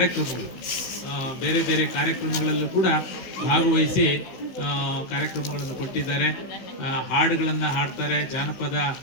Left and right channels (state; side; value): late; right; 16 ms